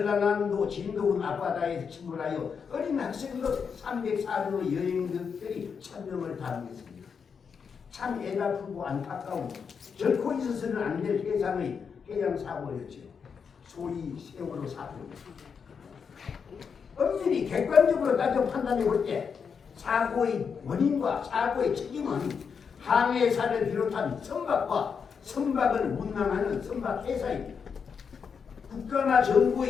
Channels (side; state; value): right; quieter; 6.3 dB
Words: 진도군 앞바다에서 침몰하여 어린 학생들 304명의 여행객들이 1000명을 담겼습니다. 참 애가쁘고 안타까운 결코 있어서는 안 될 해상의 해양사고였죠. 소위 세월호 사고입니다. 엄밀히 객관적으로 따져 판단해 볼 때 사고의 원인과 사고의 책임은 항해사를 비롯한 선박을 운항하는 선박회사입니다. 국가나